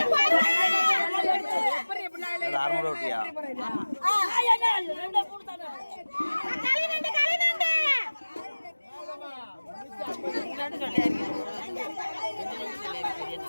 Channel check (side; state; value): both; inverted; correlation -1.00